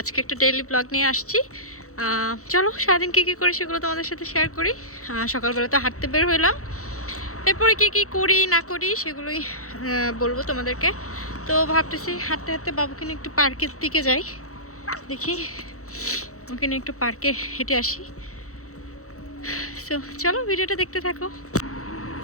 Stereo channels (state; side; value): late; right; 0.64 ms